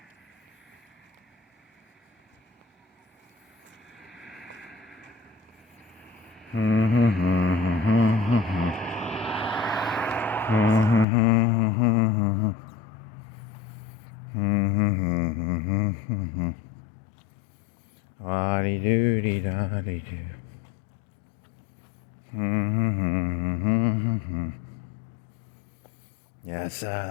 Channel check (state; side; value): drops out; right; at 11.1 s